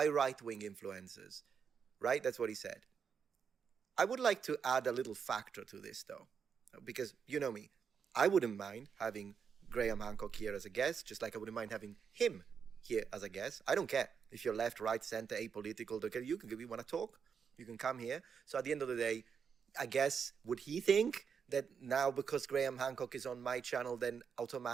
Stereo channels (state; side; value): quieter; left; 6.7 dB